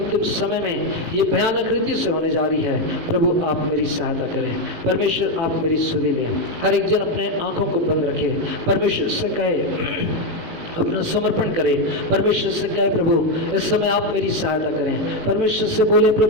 समय में ये भयानक रीति से होने जा रही है, प्रभु आप मेरी सहायता करें। परमेश्वर आप मेरी सुधि लें। हर एक जन अपने आंखों को बंद रखे, परमेश्वर से कहे अपना समर्पण करें, परमेश्वर से कहे प्रभु इस समय आप मेरी सहायता करें। परमेश्वर से बोले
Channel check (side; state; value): left; late; 18 ms